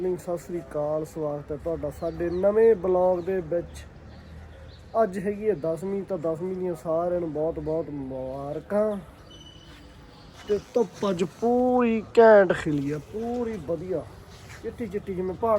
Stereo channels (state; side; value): identical; both; correlation 1.00